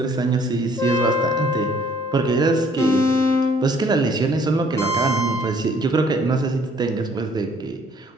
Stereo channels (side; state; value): both; normal; correlation 0.60